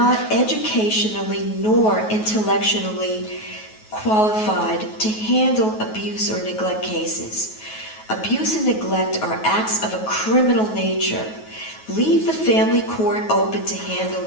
educationally nor intellectually qualified to handle abuse or neglect cases. Abuse and neglect are acts of a criminal nature. Leave the family court open to handle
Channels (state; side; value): late; right; 9.3 ms